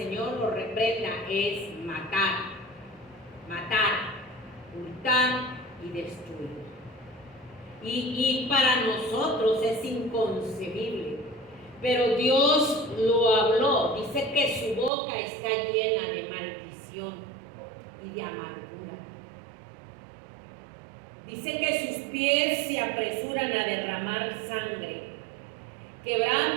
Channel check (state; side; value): drops out; left; at 14.9 s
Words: lo reprenda, es matar, hurtar y destruir. Y para nosotros es inconcebible, pero Dios lo habló. Dice que su boca está llena de maldición y de amargura. Dice que sus pies se apresuran a derramar sangre.